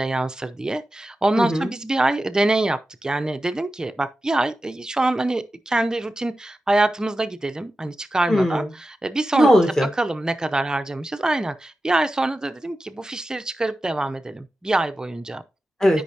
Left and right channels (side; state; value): both; normal; correlation 0.93